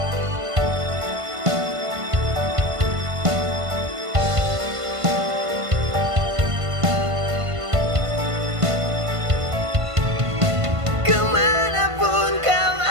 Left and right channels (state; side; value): late; left; 1.5 ms